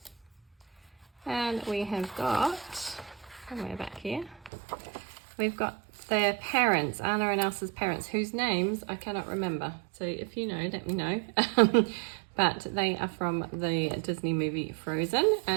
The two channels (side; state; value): left; drops out; at 4.5 s